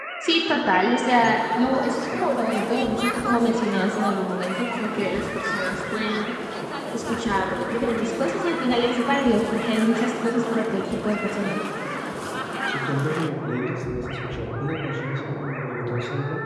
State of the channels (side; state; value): both; identical; correlation 1.00